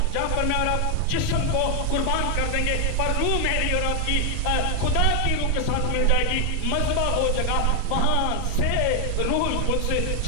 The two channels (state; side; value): different; both; correlation 0.00